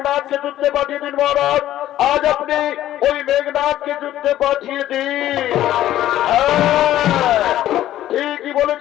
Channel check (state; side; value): quieter; right; 13.2 dB